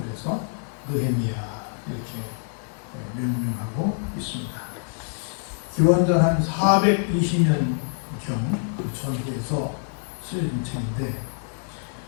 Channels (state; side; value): silent; right; 61 dB below the other